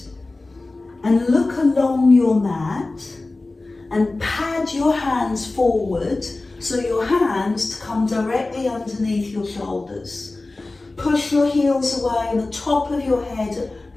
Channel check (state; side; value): quieter; right; 3.2 dB